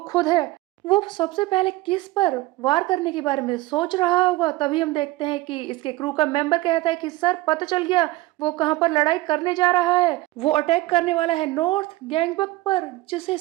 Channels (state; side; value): quieter; left; 18.9 dB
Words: है। वो सबसे पहले किस पर वार करने के बारे में सोच रहा होगा। तभी हम देखते हैं कि इसके क्रू का मेंबर कहता है कि सर, पता चल गया, वो कहां पर लड़ाई करने जा रहा है। वो अटैक करने वाला है नॉर्थ गैंगबक पर। जिसे